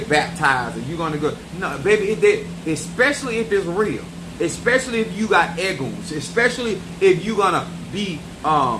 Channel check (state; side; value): identical; both; correlation 1.00